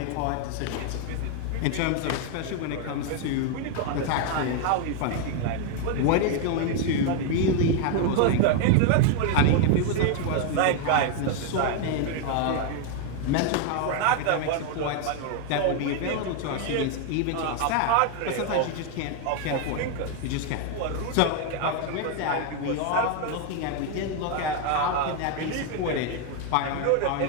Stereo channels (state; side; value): different; both; correlation 0.00